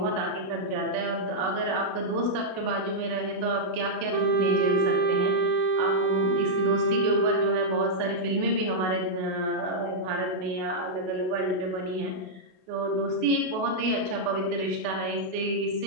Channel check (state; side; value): late; left; 32 ms